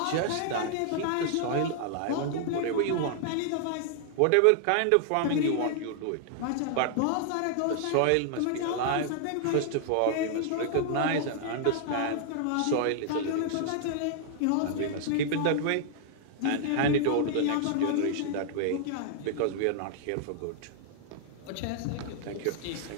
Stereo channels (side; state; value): both; different; correlation 0.00